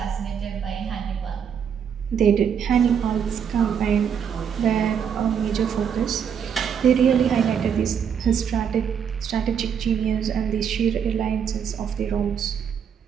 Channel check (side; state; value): left; quieter; 7.7 dB